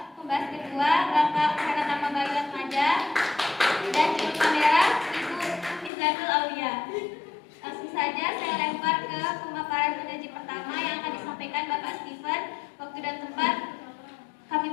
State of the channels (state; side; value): drops out; right; at 5.9 s